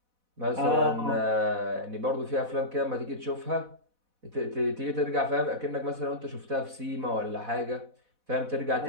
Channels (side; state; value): left; late; 4.1 ms